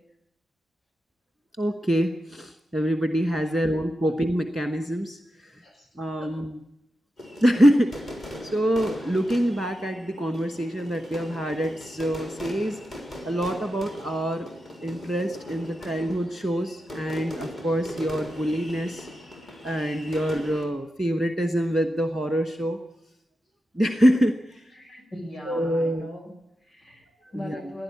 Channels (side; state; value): both; normal; correlation 0.89